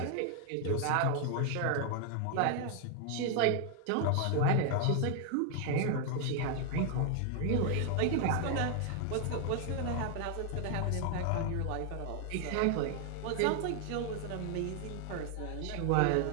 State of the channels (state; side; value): different; both; correlation 0.00